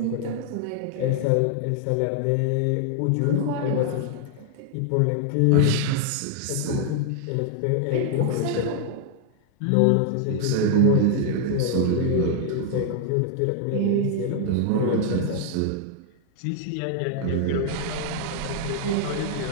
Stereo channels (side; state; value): both; different; correlation 0.00